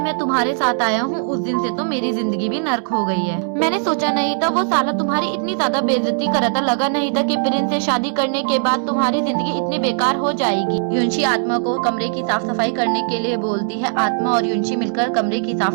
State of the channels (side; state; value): left; silent; digital silence